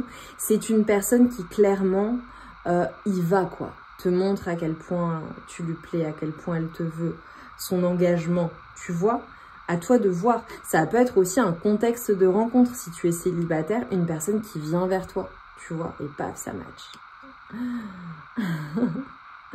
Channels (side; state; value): both; identical; correlation 1.00